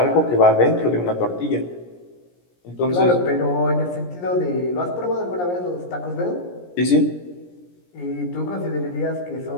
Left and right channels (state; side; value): late; right; 17 ms